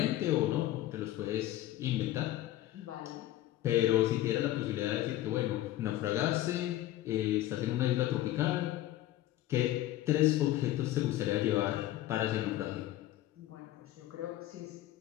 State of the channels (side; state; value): right; quieter; 14.6 dB